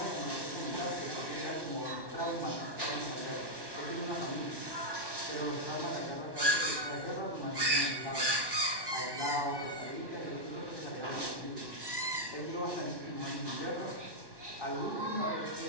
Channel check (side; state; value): left; late; 1.1 ms